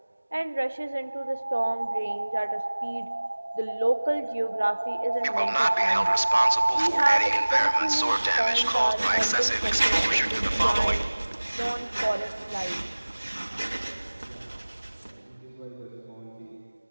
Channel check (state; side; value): inverted; both; correlation -1.00